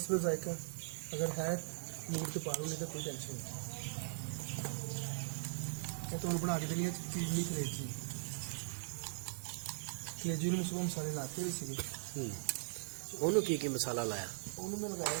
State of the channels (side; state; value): left; silent; digital silence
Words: जायका अगर है मूड तो पा लो नहीं तो कोई टेंशन नहीं। तो बना के देनी है क्रीमी कलेजी कलेजी में सुबह मसाले लाते हुए सी ओनू की मसाला लाया? उन्होंने मैं लगाया